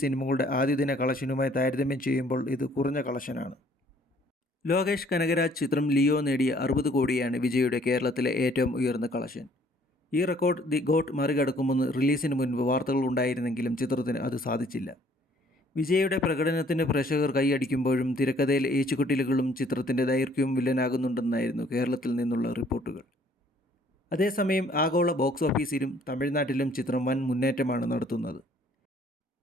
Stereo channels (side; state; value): both; normal; correlation 0.60